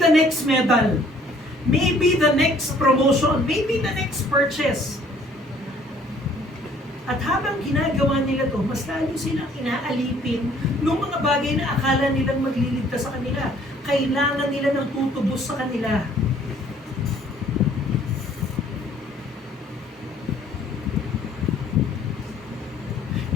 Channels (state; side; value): normal; both; correlation 0.58